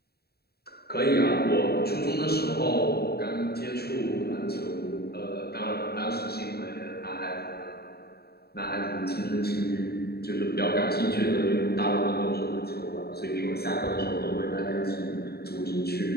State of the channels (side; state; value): right; late; 0.46 ms